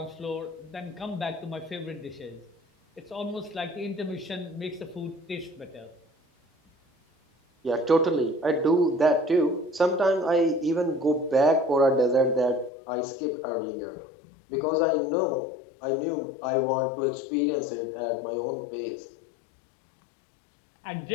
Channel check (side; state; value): right; drops out; at 12.7 s